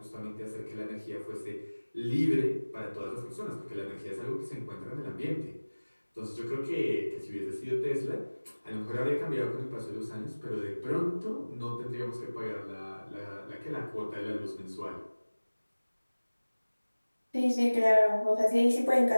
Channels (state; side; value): inverted; both; correlation -1.00